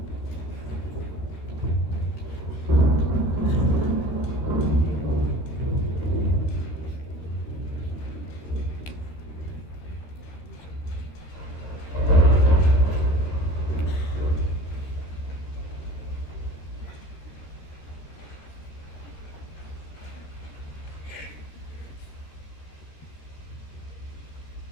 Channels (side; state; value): right; late; 13 ms